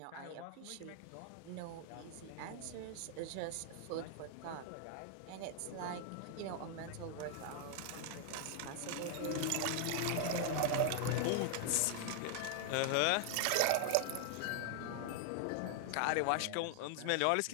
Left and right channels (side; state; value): both; different; correlation 0.00